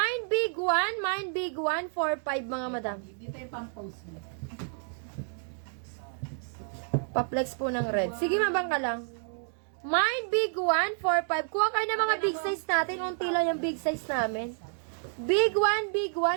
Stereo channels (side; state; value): left; silent; 58 dB below the other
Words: big one, 4,500 mga madam. Dito yung pang-post mo. Pa-flex po ng red. Sige, mabang ka lang. Mine, big one, 4,500. Kuha kayo ng mga big size natin. Unti lang yung big size namin. Big one,